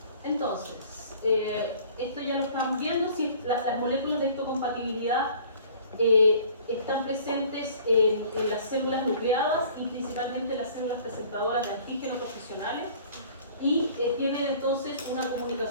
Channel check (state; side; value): inverted; both; correlation -0.51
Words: moléculas de histocompatibilidad están presentes en las células nucleadas y principalmente las células presentadoras de antígenos profesionales y tienen entonces una